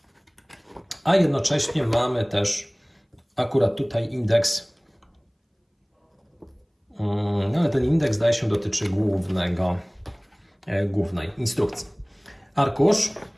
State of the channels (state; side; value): identical; both; correlation 1.00